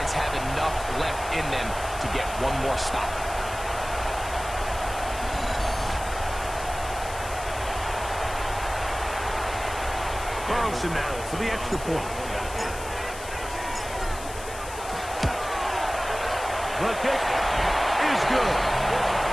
have enough left in them to get one more stop? Carlson now for the extra point. The kick is good.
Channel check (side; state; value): left; noise; hiss, 13 dB below the sound